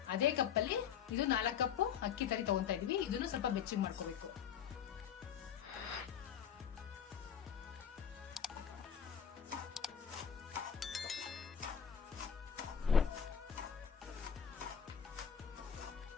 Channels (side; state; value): right; quieter; 8.2 dB